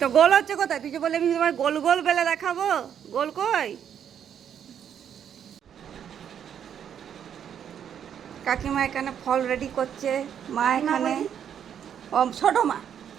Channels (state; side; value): quieter; left; 8.8 dB